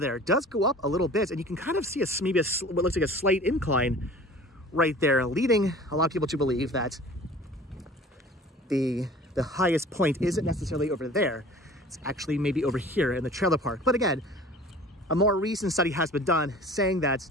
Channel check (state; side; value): normal; both; correlation 0.44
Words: It does go up a little bit, and you can kind of see maybe what looks like a slight incline right there, leading a lot of people to believe that the highest point isn't necessarily over there. It's actually maybe over here in the trailer park. But again, a more recent study has been done saying that